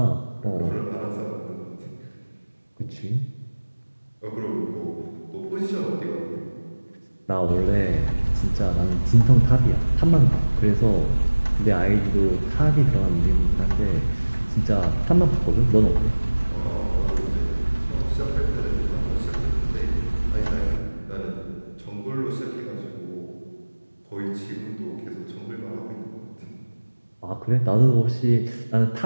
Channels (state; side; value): inverted; both; correlation -1.00